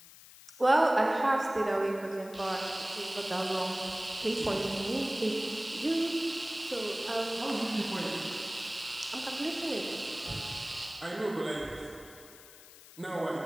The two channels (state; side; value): noise; left; hiss, 20 dB below the sound